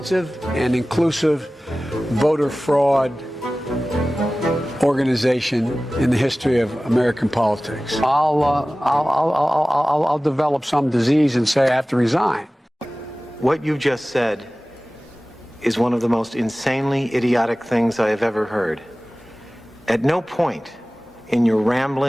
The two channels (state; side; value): normal; both; correlation 0.97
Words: and inclusive voter fraud organization in the history of American politics. I'll develop some disease and say I have to resign. What you just said is one of the most insanely idiotic things I have ever heard. At no point in your